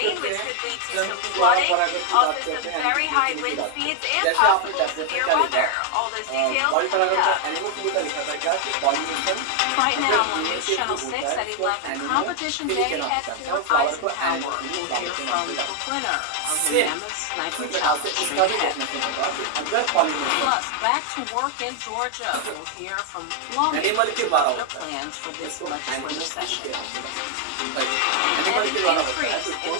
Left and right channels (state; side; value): different; both; correlation 0.00